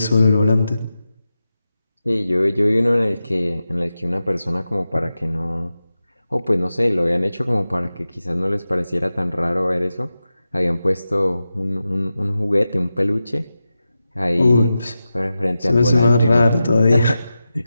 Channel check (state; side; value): inverted; both; correlation -0.92